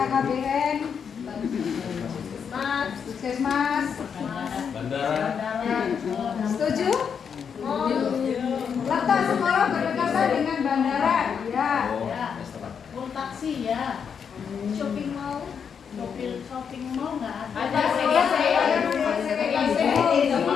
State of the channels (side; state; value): right; quieter; 6.9 dB